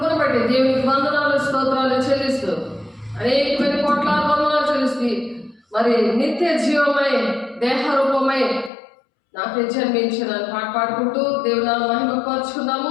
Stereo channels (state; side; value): drops out; right; at 8.7 s